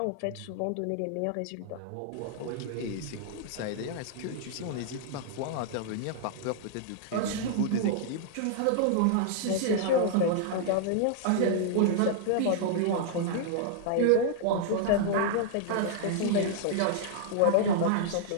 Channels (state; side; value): different; both; correlation -0.01